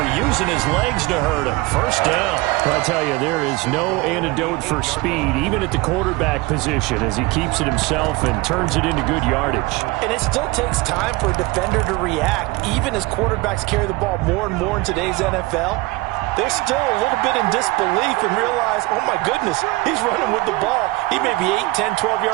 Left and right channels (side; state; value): left; quieter; 22.1 dB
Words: using his legs to hurt him. First down. I tell you, there is no antidote for speed, even at the quarterback position, as he keeps it himself and turns it into good yardage. And it still takes time for a defender to react, even as quarterbacks carry the ball more and more in today's NFL. They're still a little bit in disbelief and realize, oh my goodness, he's running with the ball. He may be 8, 10, 12